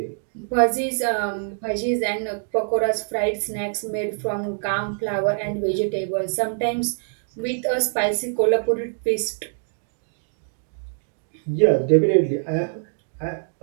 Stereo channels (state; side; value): silent; left; digital silence